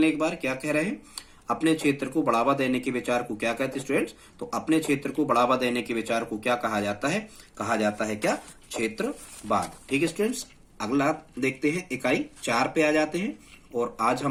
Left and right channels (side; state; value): both; identical; correlation 1.00